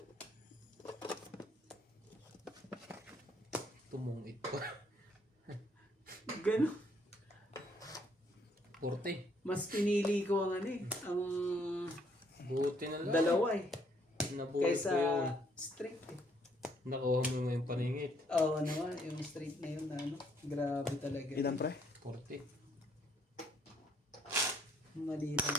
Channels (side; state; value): both; normal; correlation 0.68